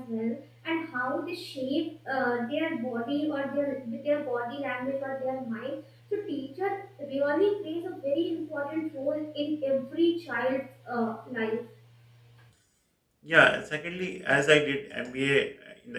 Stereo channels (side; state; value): both; identical; correlation 1.00